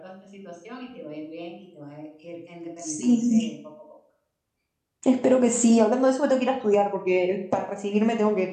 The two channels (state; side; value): identical; both; correlation 1.00